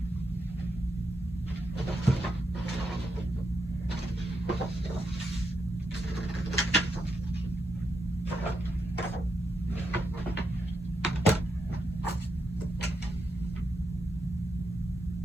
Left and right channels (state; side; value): normal; both; correlation 0.83